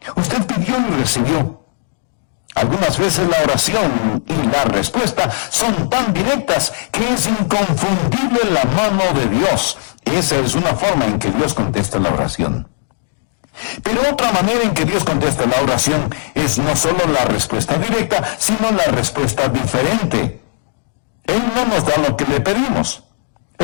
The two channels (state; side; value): silent; right; digital silence